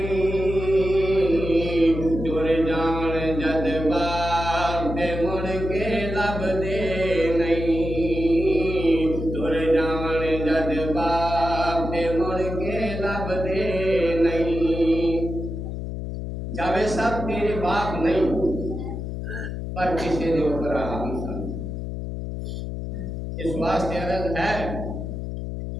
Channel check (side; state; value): left; noise; hum, 5 dB below the sound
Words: جاوے صاحب تیرے باپ نہیں پر کسی دے اوپر آہم سن اس واسطے عرض ہے